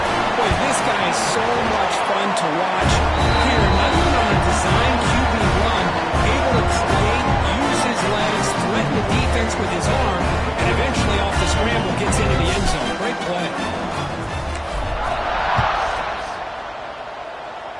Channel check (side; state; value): both; identical; correlation 1.00